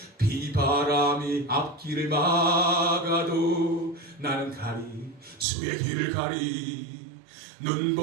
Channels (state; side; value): drops out; left; at 5.5 s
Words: 비바람이 앞길을 막아도 나는 가리 주의 길을 가리